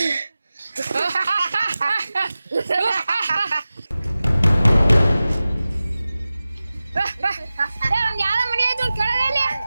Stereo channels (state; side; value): inverted; both; correlation -0.96